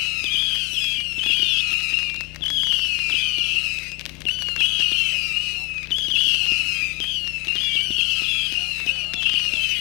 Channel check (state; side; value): quieter; right; 27.9 dB